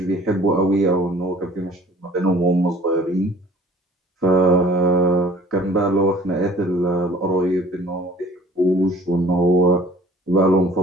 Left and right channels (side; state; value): both; normal; correlation 0.51